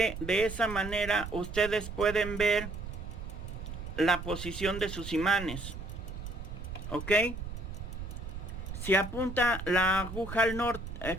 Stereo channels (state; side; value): noise; right; rumble, 8 dB below the sound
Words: de esa manera ustedes pueden ver la posición de sus imanes. ¿Ok? Si apunta la aguja al norte,